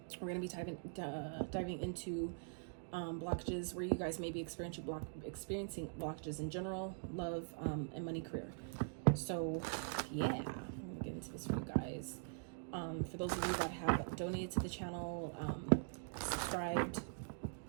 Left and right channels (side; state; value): left; silent; digital silence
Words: we're going to be diving into blockages where you guys may be experiencing blockages in general, love, and money, career. So yeah, I'm gonna get into this for you guys. For those of you that have donated to the channel, subscribed,